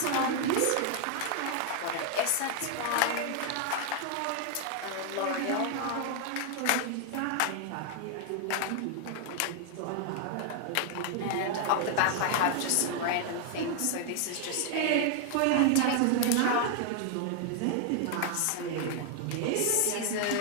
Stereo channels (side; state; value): both; different; correlation 0.00